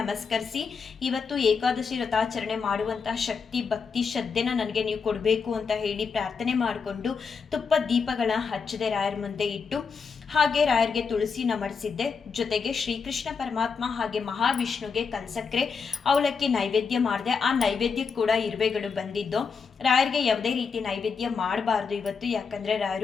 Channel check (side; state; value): right; quieter; 5.6 dB